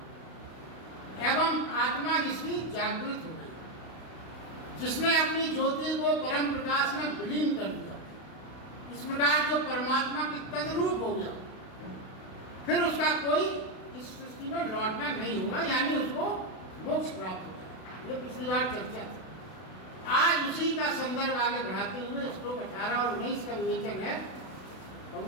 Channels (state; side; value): late; right; 32 ms